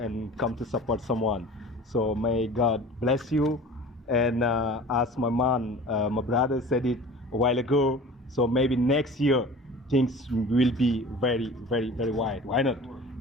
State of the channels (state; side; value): normal; both; correlation 0.41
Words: come to support someone. So may God bless you. And as my man, my brother said it a while ago, so maybe next year things will be very, very, very wide. Why not?